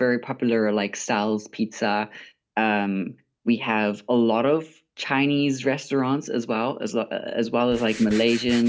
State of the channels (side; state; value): both; identical; correlation 1.00